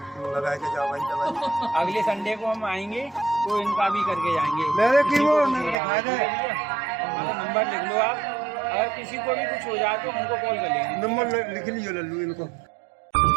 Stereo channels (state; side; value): drops out; left; at 5.8 s